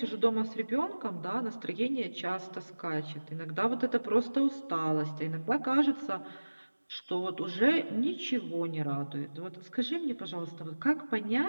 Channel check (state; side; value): inverted; both; correlation -1.00